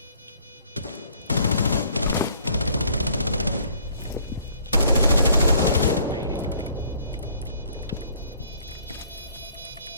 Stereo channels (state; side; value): inverted; both; correlation -0.59